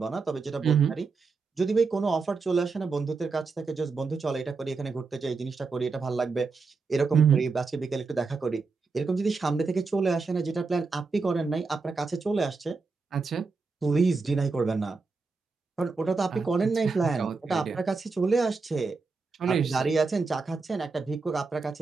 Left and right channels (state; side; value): quieter; left; 4.4 dB